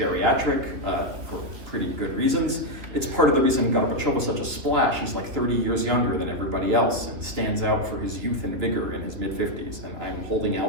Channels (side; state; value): left; late; 2.8 ms